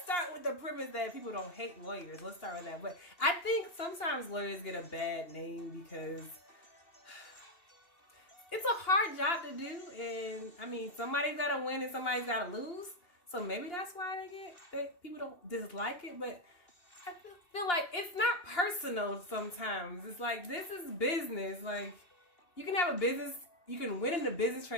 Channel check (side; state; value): right; late; 2.8 ms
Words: start with the premise that people don't hate lawyers. Let's start with that. But I think sometimes lawyers get a bad name because it's a hard job to do. And, I mean, somebody's got to win and somebody's got to lose. So maybe that's why people don't dislike it. But I feel like it's not personal sometimes. It's like, this is business. Like, you can have a business, you can win in a business